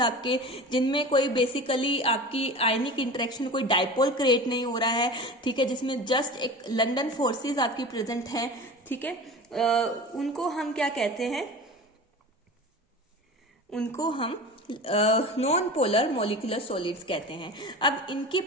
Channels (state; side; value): normal; both; correlation 0.34